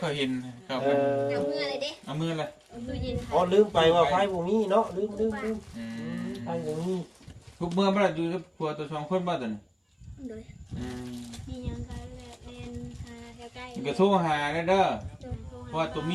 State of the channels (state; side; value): identical; both; correlation 1.00